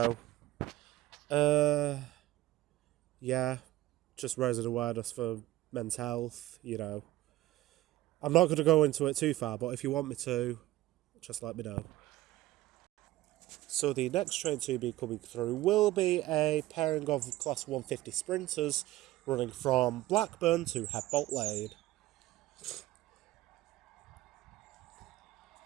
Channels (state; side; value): quieter; left; 16.6 dB